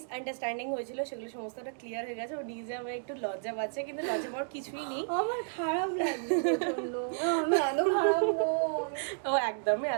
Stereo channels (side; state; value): left; silent; digital silence